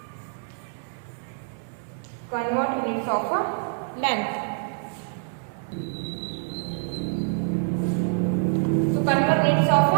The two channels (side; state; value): left; silent; 61 dB below the other